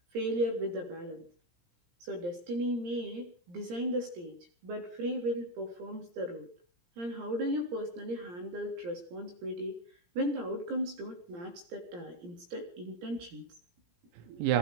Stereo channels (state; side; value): late; left; 17 ms